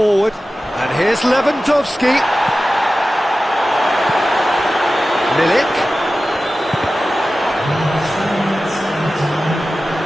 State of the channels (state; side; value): normal; both; correlation 0.95